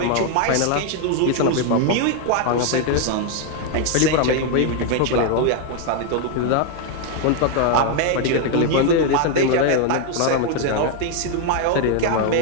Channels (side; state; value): both; different; correlation 0.00